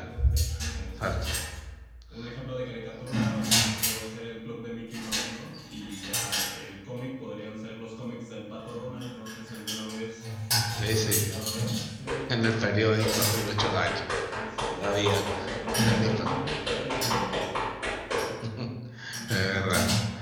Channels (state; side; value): identical; both; correlation 1.00